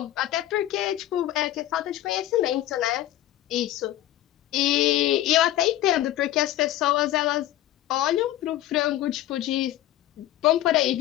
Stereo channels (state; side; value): quieter; right; 13.8 dB